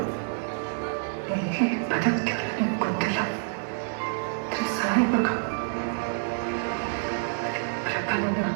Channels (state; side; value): silent; left; digital silence